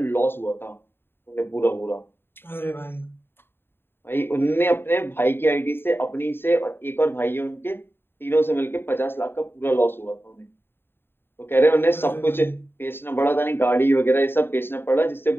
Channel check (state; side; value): late; right; 0.11 ms